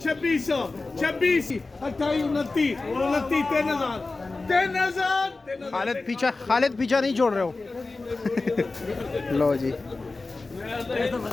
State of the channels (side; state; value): right; quieter; 3.5 dB